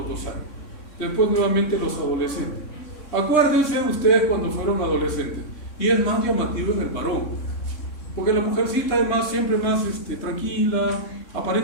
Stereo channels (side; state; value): right; late; 3.6 ms